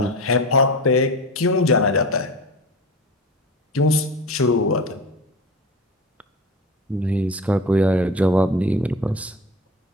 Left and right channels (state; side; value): normal; both; correlation 0.31